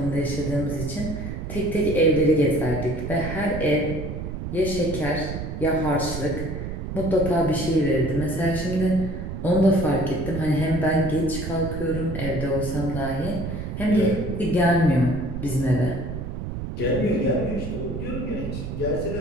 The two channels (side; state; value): right; noise; rumble, 6 dB below the sound